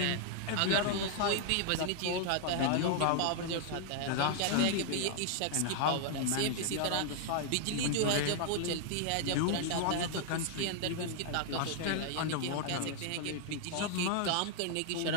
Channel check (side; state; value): both; different; correlation -0.01